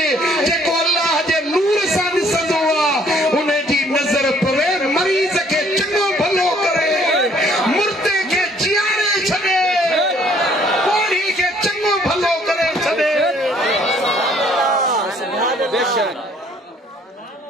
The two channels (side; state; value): both; normal; correlation 0.61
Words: जेको अल्लाह जे नूर सां ॾिसंदो आहे उन जी नज़र पवे मरीज़ खे चङो भलो करे मुर्दे खे जियारे छॾे कोढ़ी खे चङो भलो करे छॾे